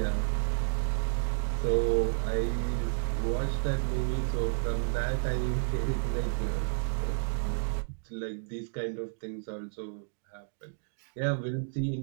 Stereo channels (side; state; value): left; silent; digital silence